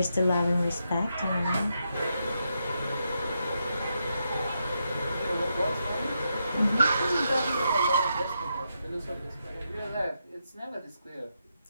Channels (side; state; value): both; inverted; correlation -0.83